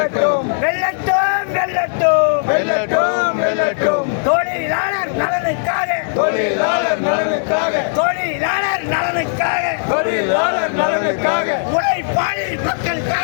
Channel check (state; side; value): silent; right; 63 dB below the other